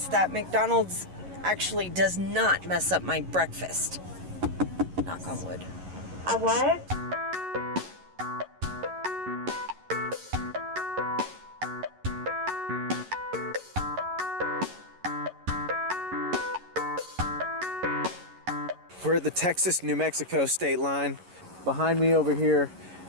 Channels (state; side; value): late; left; 11 ms